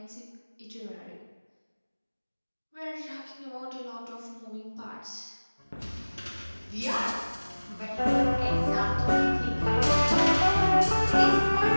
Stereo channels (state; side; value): inverted; both; correlation -1.00